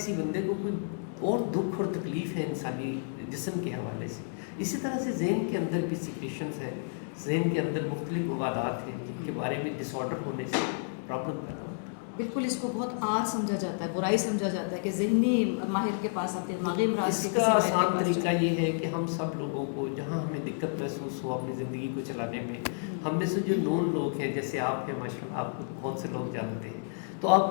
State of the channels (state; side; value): silent; right; 57 dB below the other